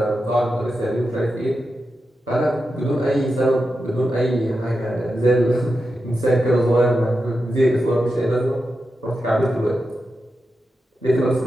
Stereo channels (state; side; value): normal; both; correlation 0.89